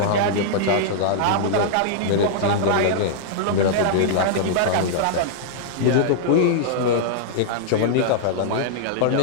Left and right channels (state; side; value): different; both; correlation -0.02